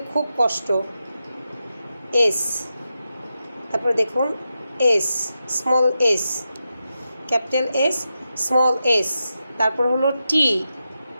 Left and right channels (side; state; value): both; inverted; correlation -0.89